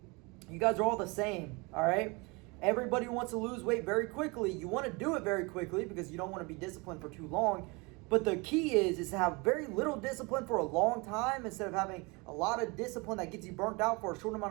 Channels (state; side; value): quieter; left; 27.4 dB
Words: You guys are all the same, all right? Everybody wants to lose weight very quickly. You want to do it very quickly because you don't want to be disciplined for too long. But the key is to have very little discipline for a long time instead of having a lot of discipline that gets you burnt out for a short